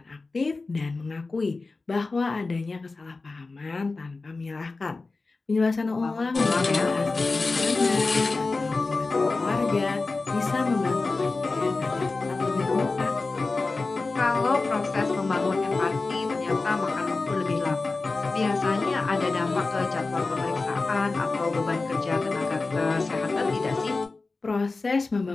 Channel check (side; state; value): right; quieter; 3.7 dB